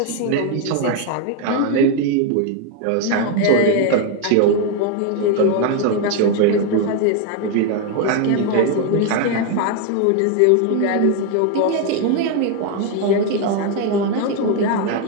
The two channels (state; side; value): different; both; correlation 0.01